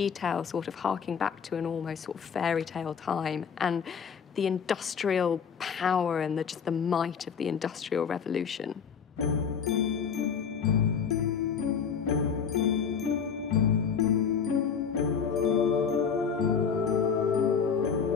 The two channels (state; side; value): quieter; right; 6.7 dB